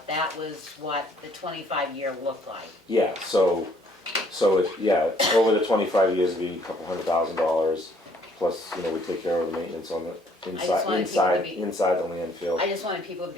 that was what the 25-year looked like. Yeah, so over the 25 years, it'd be a couple $100,000, plus, we take care of the maintenance on the just wanted people to be- inside the landfill. I just wanted people to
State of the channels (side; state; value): both; normal; correlation 0.63